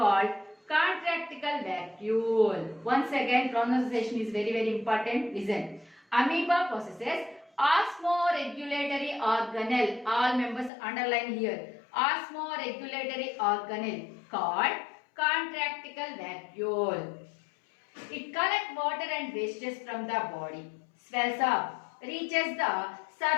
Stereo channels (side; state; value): right; drops out; at 10.7 s